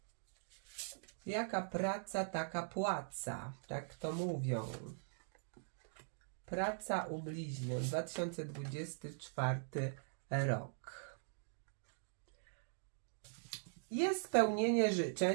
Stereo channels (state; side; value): silent; left; digital silence